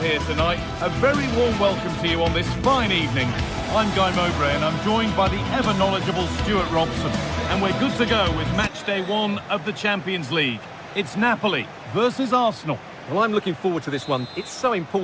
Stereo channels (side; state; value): both; identical; correlation 1.00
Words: tonight. A very warm welcome to you on this fine evening. I'm Guy Mowbray and I'm joined by the ever-knowledgeable Stuart Robson. And we're good to go with match day 1 of the Champions League. It's Napoli versus Arsenal. Well, I'm looking forward to this one. It's so